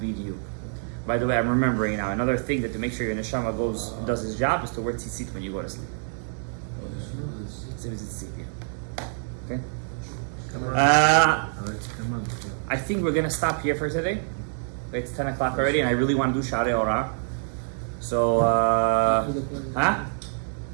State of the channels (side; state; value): left; silent; digital silence